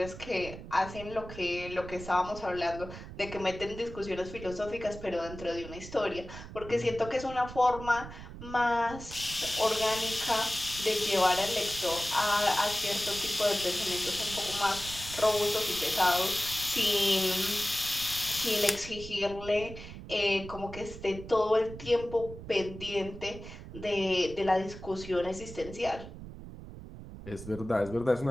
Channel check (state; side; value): noise; right; rumble, 12 dB below the sound